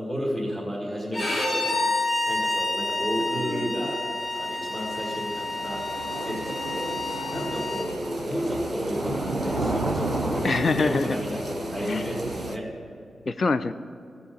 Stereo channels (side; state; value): both; normal; correlation 0.88